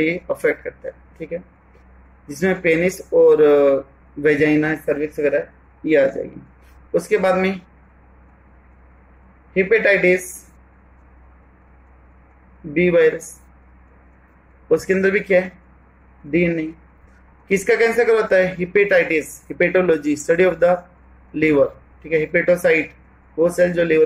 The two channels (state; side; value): identical; both; correlation 1.00